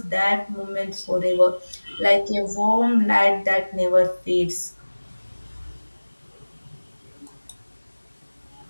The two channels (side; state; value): both; inverted; correlation -1.00